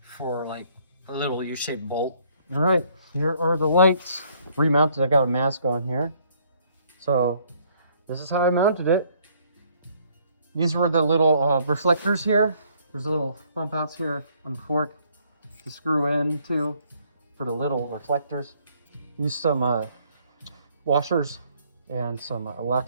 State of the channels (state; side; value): inverted; both; correlation -0.65